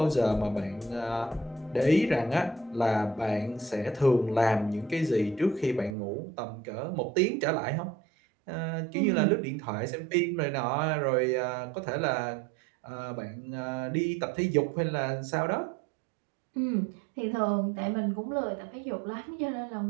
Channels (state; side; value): drops out; left; at 6.0 s